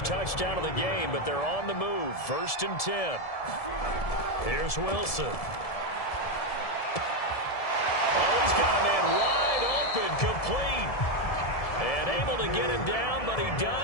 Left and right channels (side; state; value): right; late; 1.7 ms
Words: touchdown of the game, but they're on the move. 1st and 10. Here's Wilson. Oh, he's got a man wide open, complete. And able to get him down, but he